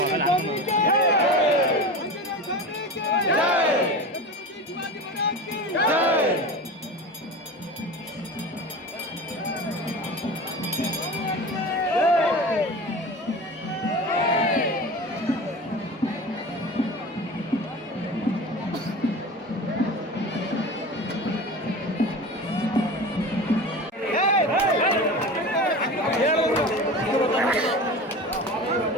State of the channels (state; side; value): normal; both; correlation 0.32